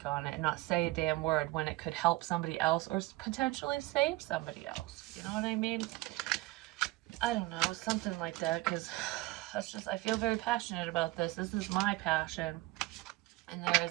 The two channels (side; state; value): left; quieter; 19.9 dB